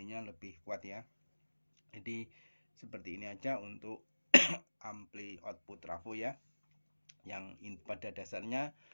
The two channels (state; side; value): inverted; both; correlation -1.00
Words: lebih kuat ya. Jadi seperti ini aja untuk ampli output trafo ya. Yang pada dasarnya